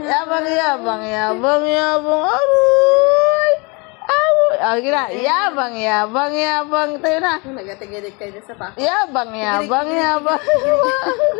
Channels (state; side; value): quieter; right; 29.5 dB